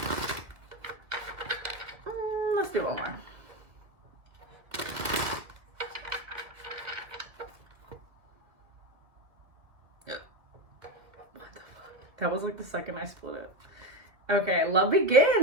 Let's do one more. That was like the second I split it. Okay, love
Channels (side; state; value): left; late; 2.3 ms